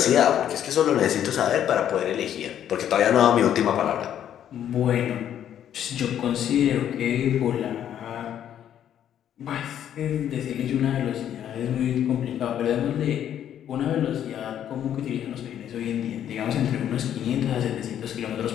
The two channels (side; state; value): right; quieter; 10.2 dB